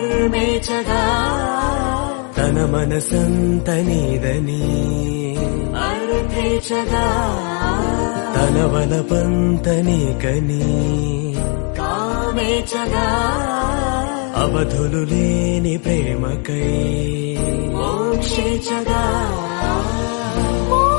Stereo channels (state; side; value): quieter; right; 36.6 dB